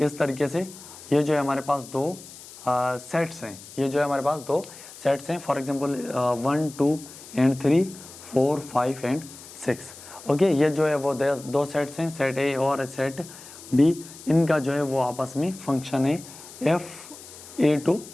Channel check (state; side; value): noise; left; hiss, 17 dB below the sound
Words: तरीके से। ये जो है हमारे पास दो सेट्स हैं, ये जो है हमारे पास दो सेट्स हैं। For example 1 2 and 3 4 5 and 6। Okay, ये जो है वो दो सेट्स हैं, सेट ए और सेट बी। इनका जो है वो आपस में फंक्शन है F A to